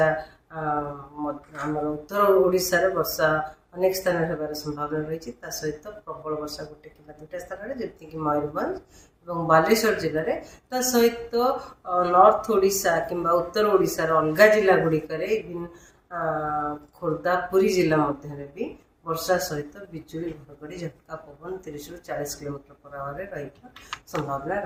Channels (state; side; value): identical; both; correlation 1.00